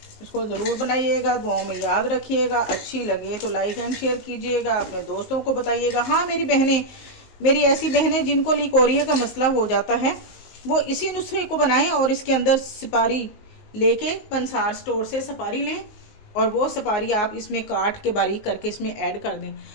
इसको ज़रूर बनाइएगा, दुआओं में याद रखिएगा। अच्छी लगे तो लाइक एंड शेयर कीजिएगा, अपने दोस्तों को बताइएगा। हाँ, मेरी ऐसी बहनें जिनको लिकोरिया का मसला हो जाता है, वो इसी नुस्खे को बनाएं और इसके अंदर सुपारी लेके पंसार स्टोर से सुपारी लें और वो सुपारी आप इसमें काट के बारीक करके इसमें ऐड कर दें,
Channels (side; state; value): right; late; 19 ms